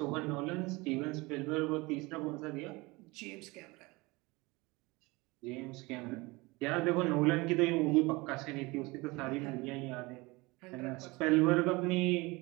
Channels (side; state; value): left; quieter; 23.7 dB